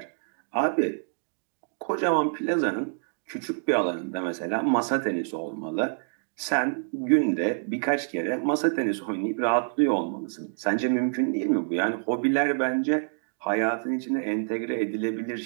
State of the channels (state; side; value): silent; left; digital silence